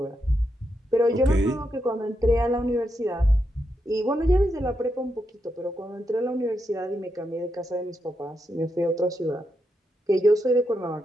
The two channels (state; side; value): normal; both; correlation 0.84